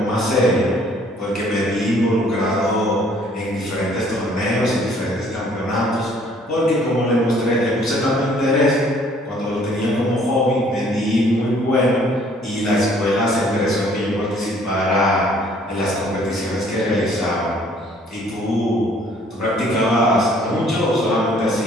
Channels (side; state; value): both; normal; correlation 0.60